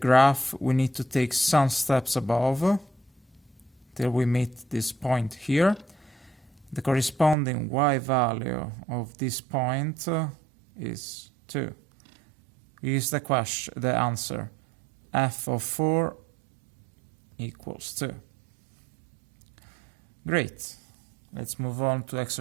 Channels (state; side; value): drops out; left; at 7.4 s